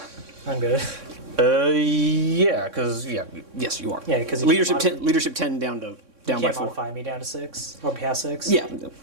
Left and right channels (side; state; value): left; late; 3.6 ms